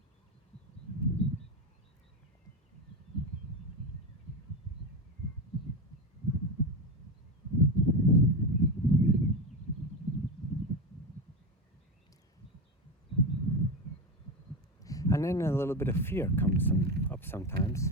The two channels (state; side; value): normal; both; correlation 0.16